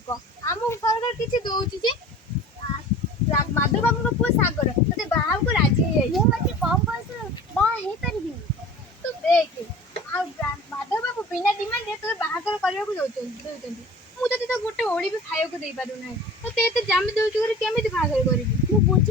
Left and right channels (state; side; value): normal; both; correlation 0.41